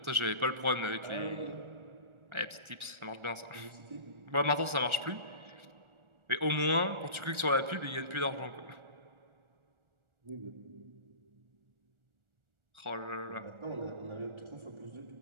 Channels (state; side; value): late; left; 1.4 ms